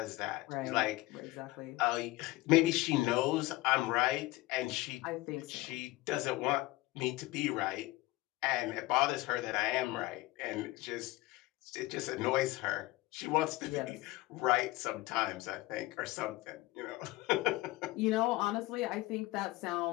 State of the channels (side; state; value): right; quieter; 19.6 dB